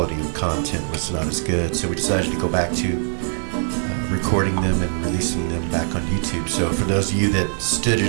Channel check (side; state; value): left; silent; digital silence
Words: of content was not as good, so we decided to go back to recording them and releasing them back on YouTube. So for those of you that stood